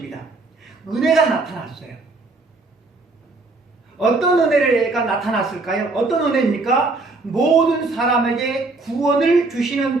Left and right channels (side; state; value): left; quieter; 3.4 dB